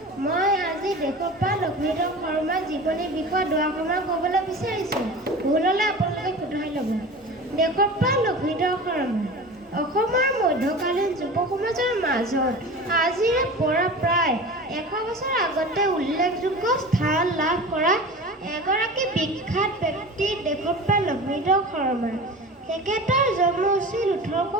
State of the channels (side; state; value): both; normal; correlation 0.34